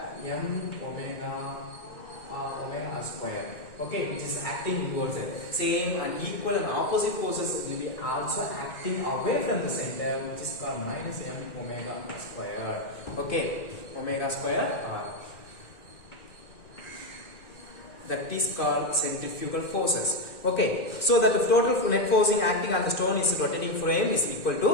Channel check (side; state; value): right; late; 2.6 ms